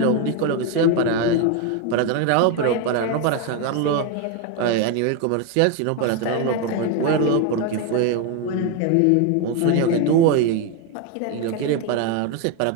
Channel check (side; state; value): both; different; correlation 0.02